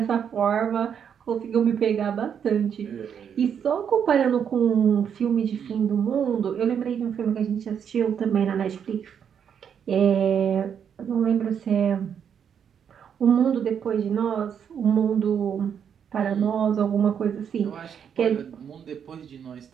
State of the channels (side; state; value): left; quieter; 7.9 dB